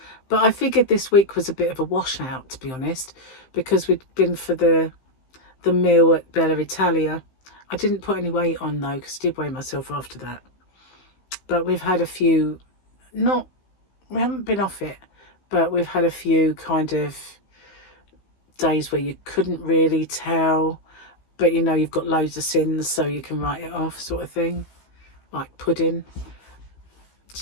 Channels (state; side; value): late; right; 15 ms